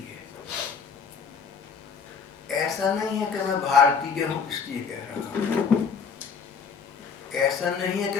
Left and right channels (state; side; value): quieter; right; 5.9 dB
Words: है। ऐसा नहीं है कि मैं भारतीय हूं इसलिए कह रहा हूं, ऐसा नहीं है कि